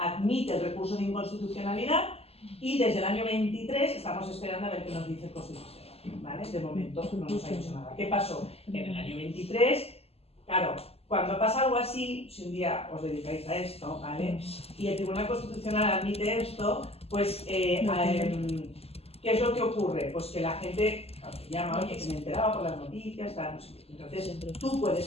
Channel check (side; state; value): right; late; 0.29 ms